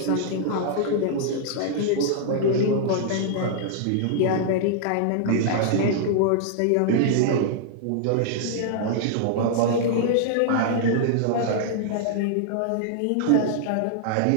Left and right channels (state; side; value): different; both; correlation -0.01